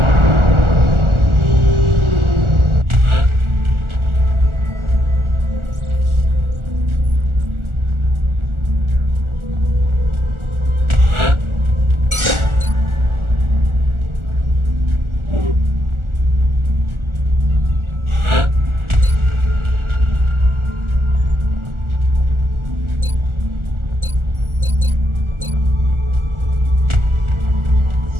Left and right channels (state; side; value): late; left; 1.4 ms